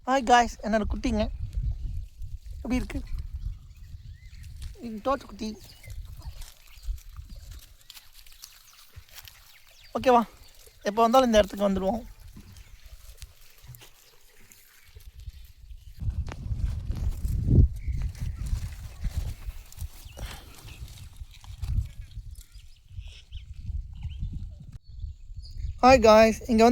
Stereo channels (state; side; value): identical; both; correlation 1.00